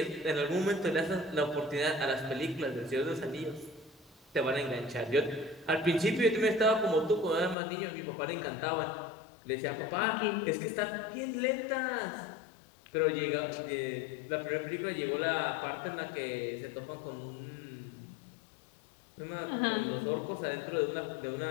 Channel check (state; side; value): drops out; right; at 7.6 s